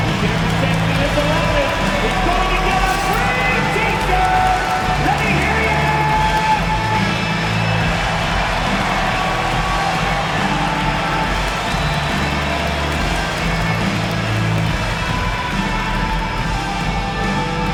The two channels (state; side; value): identical; both; correlation 1.00